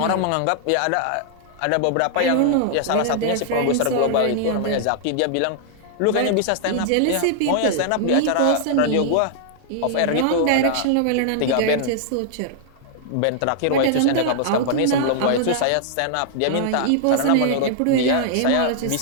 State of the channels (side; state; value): both; different; correlation -0.01